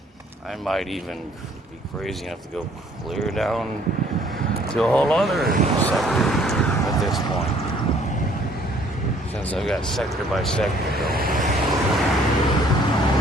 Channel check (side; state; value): both; normal; correlation 0.60